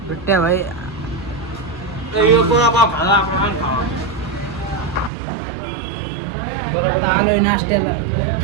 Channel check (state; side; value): drops out; left; at 5.1 s